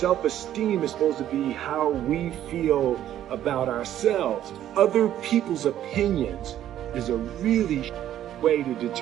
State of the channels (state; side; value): quieter; left; 11.7 dB